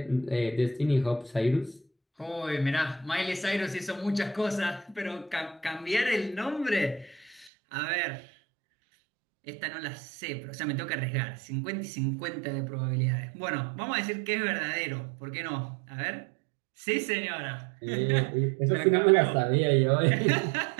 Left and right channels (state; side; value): drops out; left; at 7.5 s